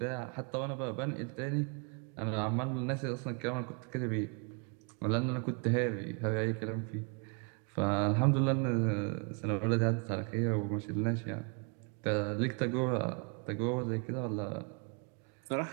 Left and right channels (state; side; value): quieter; left; 35.5 dB